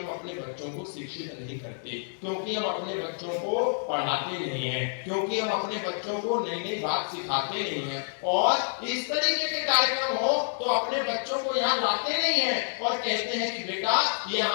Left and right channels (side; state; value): right; silent; digital silence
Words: अपने बच्चों को शिक्षित नहीं करते, क्योंकि हम अपने बच्चों को पढ़ाते नहीं हैं, क्योंकि हम अपने बच्चों को नई नई बात सिखाते नहीं हैं। और इस तरीके के कार्यक्रम हो तो अपने बच्चों को यहाँ लाते नहीं हैं और कहते हैं कि बेटा